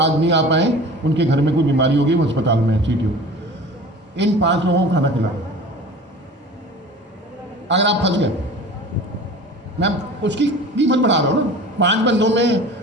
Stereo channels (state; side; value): normal; both; correlation 0.39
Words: नहीं आ पाए, उनके घर में कोई बीमारी होगी, वो अस्पताल में है सीटीओ, इन 5 लोगों को खाना खिलाओ। अगर आप फंस गए, मैं उसकी कीमत बढ़ा रहा हूँ ना, 5 बंदों में